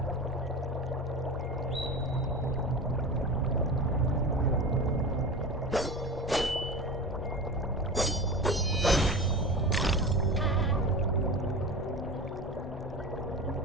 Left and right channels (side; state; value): both; normal; correlation 0.29